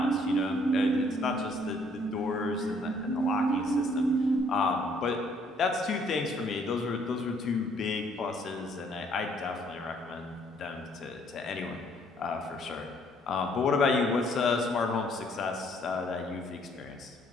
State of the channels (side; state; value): both; normal; correlation 0.64